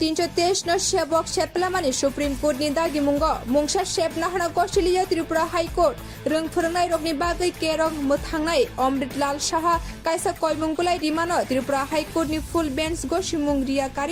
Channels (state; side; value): identical; both; correlation 1.00